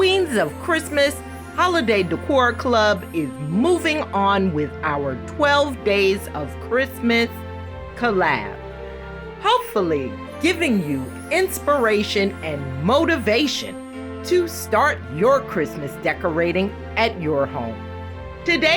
of Christmas Holiday Decor Club is moving on with our 12 Days of Christmas collab. Hopefully, giving you inspiration and motivation to start your Christmas decorating at your home.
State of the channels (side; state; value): both; identical; correlation 1.00